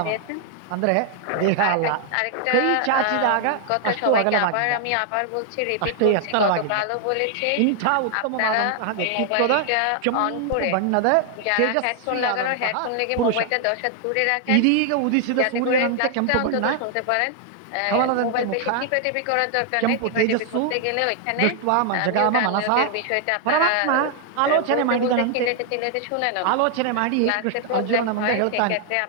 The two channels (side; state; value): both; different; correlation 0.00